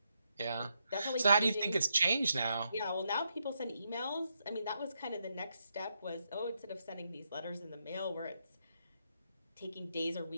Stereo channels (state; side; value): inverted; both; correlation -0.80